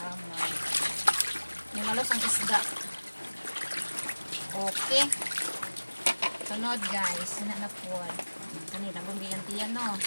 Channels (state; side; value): inverted; both; correlation -1.00